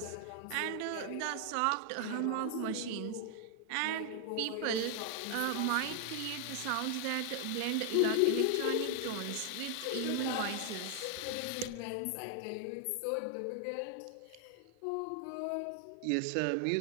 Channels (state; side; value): different; both; correlation 0.00